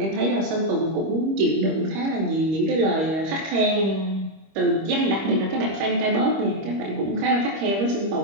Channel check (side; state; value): left; late; 25 ms